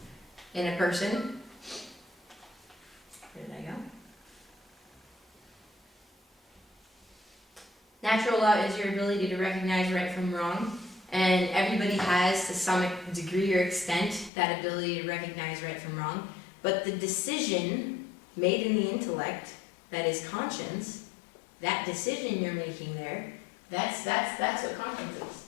in a person. Where did I go? Natural law is your ability to recognize right from wrong, and everybody has, to some degree or extent, that ability to recognize right from wrong. But the decision made in the intellect, that is conscience, that decision you're making there, that's what conscience is.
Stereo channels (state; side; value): drops out; right; at 14.3 s